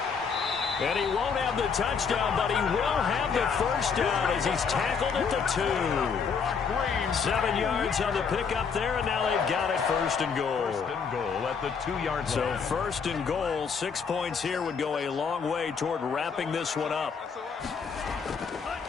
And he won't have the touchdown, but he will have the first down as he's tackled at the 2. 7 yards on the pickup there, and now they've got it 1st and goal. 1st and goal at the 2-yard line. So 1st and goal, 6 points here would go a long way toward wrapping this one up.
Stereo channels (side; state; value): right; quieter; 6.0 dB